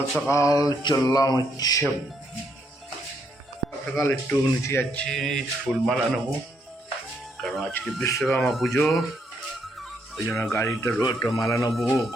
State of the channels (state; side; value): normal; both; correlation 0.74